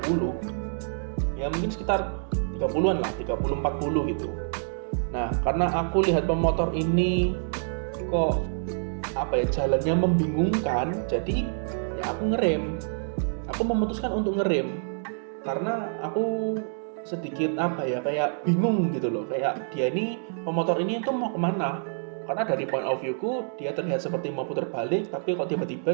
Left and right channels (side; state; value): left; silent; digital silence